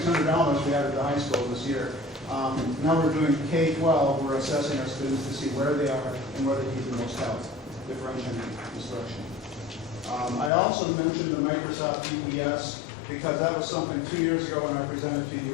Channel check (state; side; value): drops out; right; at 10.5 s